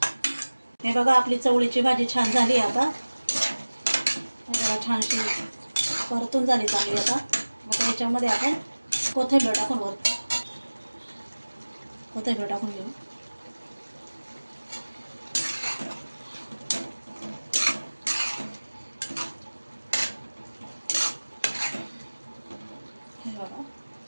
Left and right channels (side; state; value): both; inverted; correlation -1.00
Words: हे बघा आपली चवळीची भाजी छान झाली आता। हे बघा छानशी परतून झाली चांगली। आता याच्यामध्ये आपण कोथिंबीर टाकून कोथिंबीर टाकून घेऊ। हे बघा